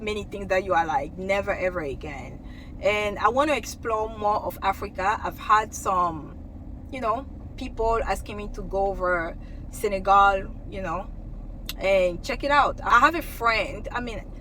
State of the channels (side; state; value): both; identical; correlation 1.00